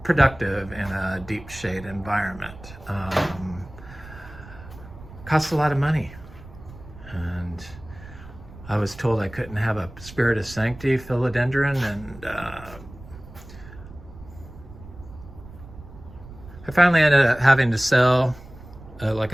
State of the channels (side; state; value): right; noise; rumble, 17 dB below the sound